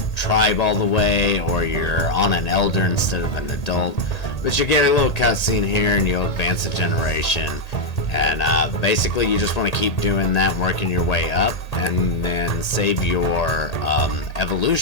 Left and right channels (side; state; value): right; late; 1.8 ms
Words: tribe all the way, or you're on an elder instead of an adult. But you'll get a little cutscene here and you'll advance a generation. And basically you just want to keep doing that, working your way up, and then save your